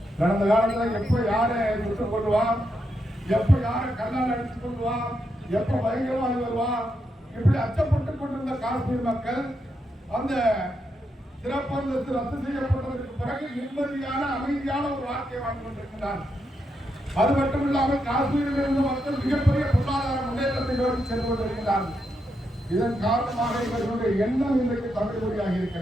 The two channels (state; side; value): normal; both; correlation 0.82